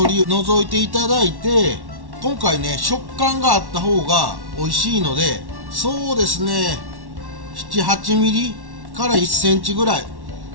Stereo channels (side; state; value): left; late; 1.1 ms